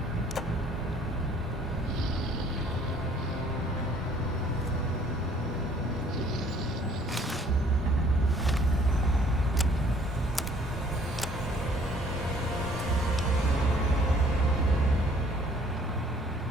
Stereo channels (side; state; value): both; normal; correlation 0.58